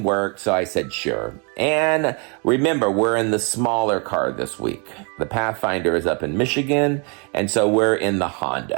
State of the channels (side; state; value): left; quieter; 34.9 dB